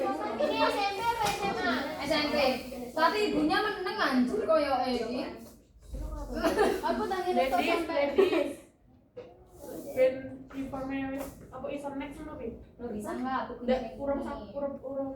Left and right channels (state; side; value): identical; both; correlation 1.00